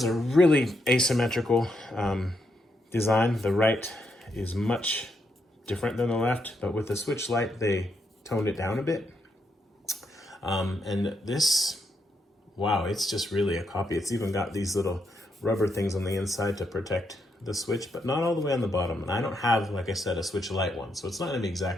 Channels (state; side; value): normal; both; correlation 0.79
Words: a really asymmetrical design. The right is much different than the left, but with the Switch Lite, they toned it down a bit. And this, wow, it's just really a copy. It's even got these little rubber things on the inside to protect the Switch, but not all the way on the bottom. And I don't have, like I said, a Switch Lite one, so it's not gonna be